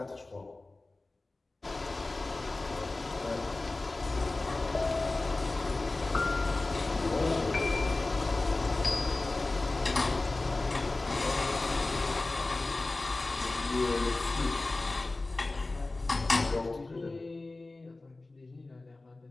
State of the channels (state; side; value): quieter; right; 3.2 dB